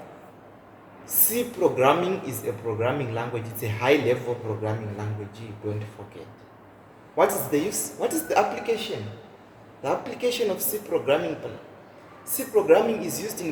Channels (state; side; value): identical; both; correlation 1.00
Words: C programming is a programming language. It's a high-level programming language. Don't forget. What is the use? What is the application? The application of C programming. C programming is used